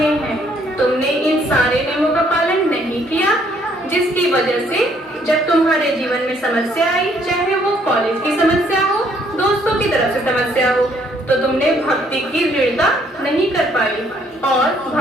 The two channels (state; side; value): normal; both; correlation 0.66